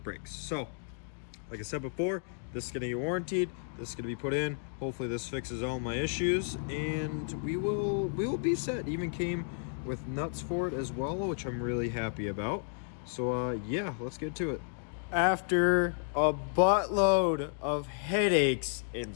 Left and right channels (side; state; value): right; silent; digital silence